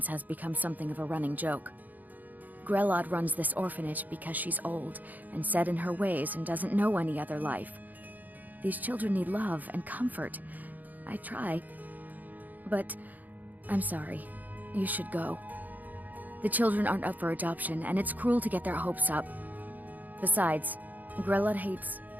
has become something of a running joke. Grelod runs this orphanage because she's old and set in her ways and doesn't know any other life. These children need love and comfort. I try. But I'm sorry. You should go. The children aren't up for adoption, and it's cruel to get their hopes up. Besides, Grelod hates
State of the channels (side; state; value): left; late; 0.082 ms